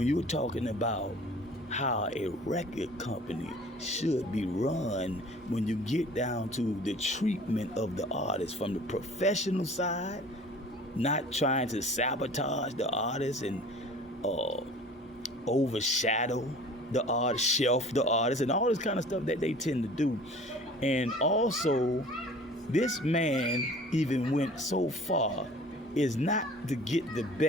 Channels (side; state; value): both; normal; correlation 0.46